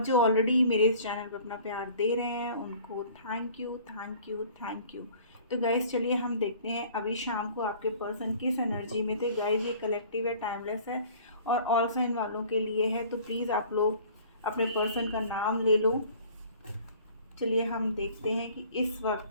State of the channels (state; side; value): inverted; both; correlation -0.49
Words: जो ऑलरेडी मेरे इस चैनल पर अपना प्यार दे रहे हैं उनको thank you thank you thank you. तो गाइस चलिए हम देखते हैं अभी शाम को आपके पर्सन किस एनर्जी में थे। गाइस ये कलेक्टिव है, टाइमलेस है और ऑल साइन वालों के लिए है, तो प्लीज़ आप लोग अपने पर्सन का नाम ले लो। चलिए हम देखते हैं कि इस